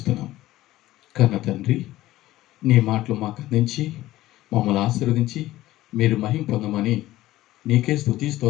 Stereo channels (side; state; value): right; quieter; 15.9 dB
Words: కన్న తండ్రి, నీ మాటలు మాకు అందించి మమ్మల్ని ఆశీర్వదించి మీరు మహిమ పొందమని నీకే స్తుతి